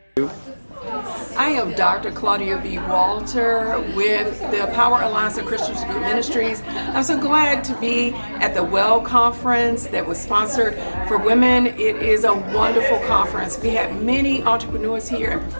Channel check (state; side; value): inverted; both; correlation -1.00